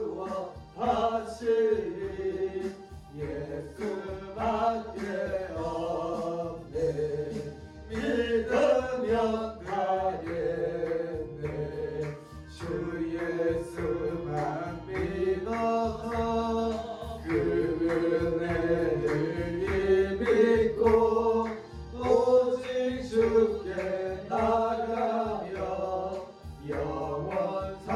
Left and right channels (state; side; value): identical; both; correlation 1.00